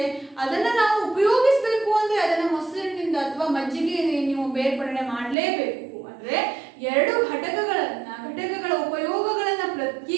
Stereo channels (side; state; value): left; drops out; at 5.4 s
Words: ಅದನ್ನ ನಾವು ಉಪಯೋಗಿಸಬೇಕು ಅಂದ್ರೆ ಅದನ್ನ ಮೊಸರಿನಿಂದ ಅಥವಾ ಮಜ್ಜಿಗೆ ನೀವು ಬೇರ್ಪಡಣೆ ಮಾಡಲೇಬೇಕು. ಅಂದ್ರೆ 2 ಘಟಕಗಳ ಉಪಯೋಗಗಳನ್ನ